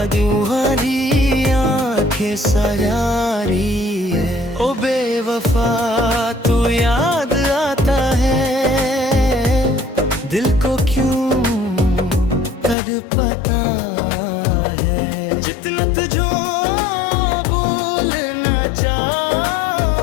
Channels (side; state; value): right; drops out; at 12.8 s